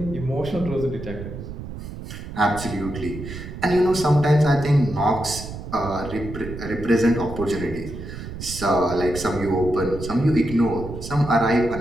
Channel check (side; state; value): right; noise; rumble, 10 dB below the sound